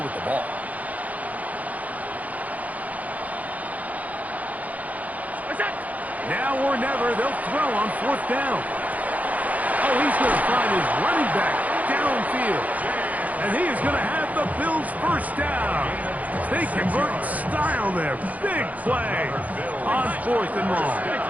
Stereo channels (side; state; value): left; late; 0.075 ms